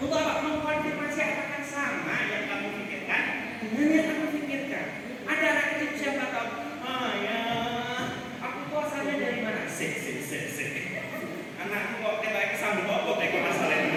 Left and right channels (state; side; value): identical; both; correlation 1.00